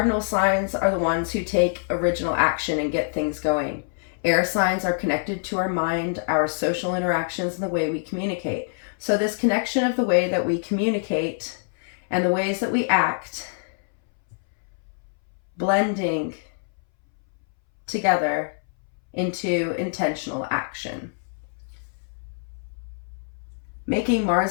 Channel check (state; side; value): silent; right; 62 dB below the other